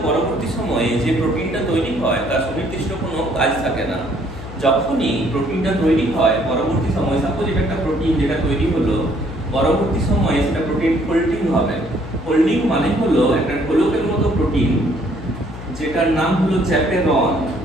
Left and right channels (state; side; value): noise; left; hum, 12 dB below the sound